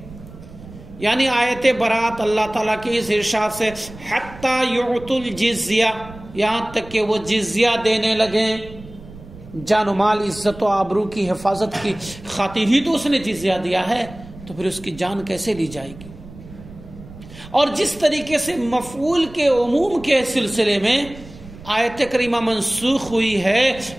یعنی آیت برات اللہ تعالیٰ کی اس ارشاد سے حتی یعطوا الجزیہ، یہاں تک کہ وہ جزیہ دینے لگیں. جان و مال، عزت و آبرو کی حفاظت کی خاطر ہی تو اس نے جزیہ دیا ہے، تو پھر اس کی جان کیسے لی جائے گی؟ اور جس طریقے سے مفعول کے عموم کے سلسلے میں آیت کریمہ منسوخ ہوئی ہے،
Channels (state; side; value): noise; right; rumble, 17 dB below the sound